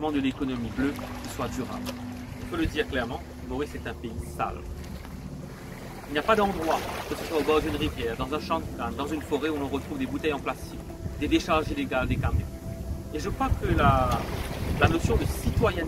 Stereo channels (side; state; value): both; identical; correlation 1.00